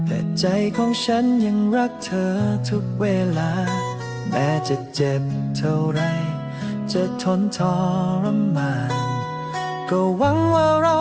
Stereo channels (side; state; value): both; identical; correlation 1.00